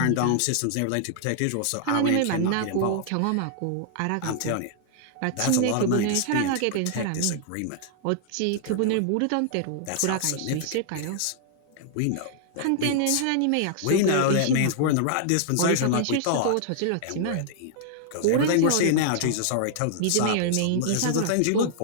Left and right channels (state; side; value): different; both; correlation -0.01